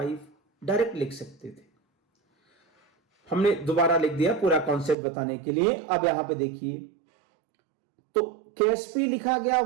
डायरेक्ट लिख सकते थे। हमने दोबारा लिख दिया पूरा कॉन्सेप्ट बताने के लिए। अब यहां पे देखिए, तो KSP लिखा गया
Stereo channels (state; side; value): drops out; left; at 5.0 s